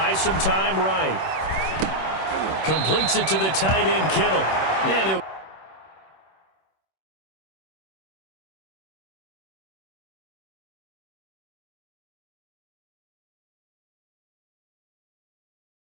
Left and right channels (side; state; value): right; late; 26 ms